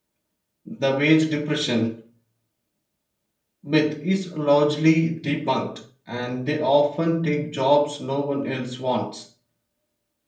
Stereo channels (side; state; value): both; identical; correlation 1.00